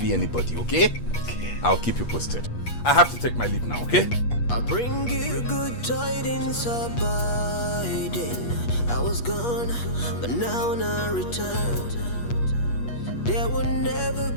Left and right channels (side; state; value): right; late; 8.4 ms